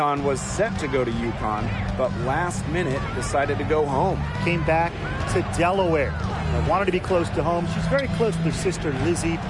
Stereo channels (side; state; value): both; identical; correlation 1.00